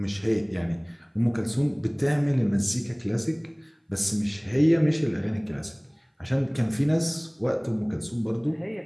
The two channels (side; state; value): both; identical; correlation 1.00